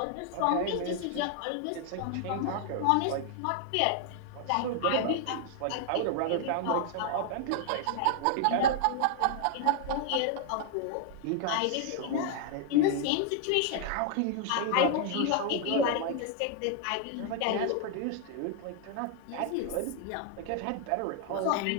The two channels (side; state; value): both; different; correlation 0.00